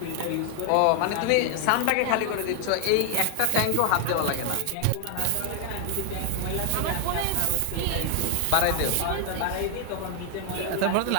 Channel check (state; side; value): different; both; correlation 0.00